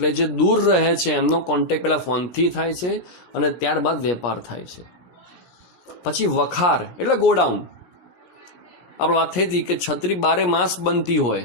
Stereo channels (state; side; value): late; right; 17 ms